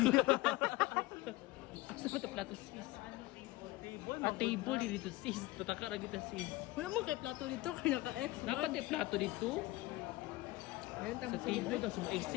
Asa ba ito plato sis? Table dito sis. Pataka na kita sis. Wala mo kay plato dito, kay naka-X. Dapat may plato dito. Ayun, Sa table daw. So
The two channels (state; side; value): quieter; right; 18.9 dB